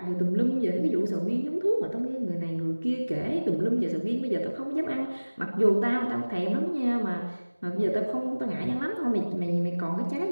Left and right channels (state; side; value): inverted; both; correlation -1.00